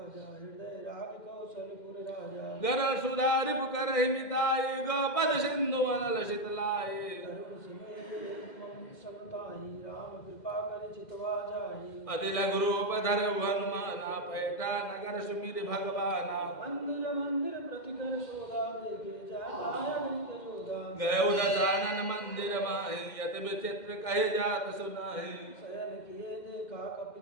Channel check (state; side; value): late; right; 2.1 ms